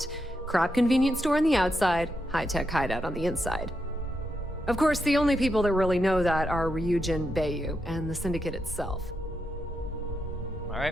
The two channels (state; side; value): normal; both; correlation 0.83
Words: Crap convenience store on the outside, high-tech hideout on the inside. Of course, the only people that really know that are Ryujin, Bayu, and the Syndicate itself.